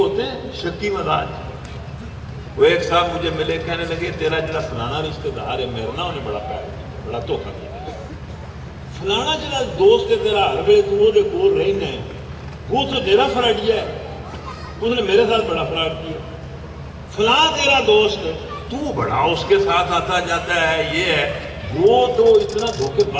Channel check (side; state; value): both; identical; correlation 1.00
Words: ہیں شکی مزاج، وہ ایک صاحب مجھے ملے، کہنے لگے تیرا جڑا فلانا رشتہ دار ہے میرا نا، انہیں بڑا پیار کیا، بڑا دھوکہ دیا، فلانا جڑا دوست ہے تیرا ہر ویلے تو وہ کول رہنا ہے، وہ تو تیرا فراڈیا ہے، اس نے میرے ساتھ بڑا فراڈ کیا، فلاں تیرا دوست ہے تو بڑا اس کے ساتھ آتا جاتا ہے، یہ ہے، وہ تو اتنا دھوکے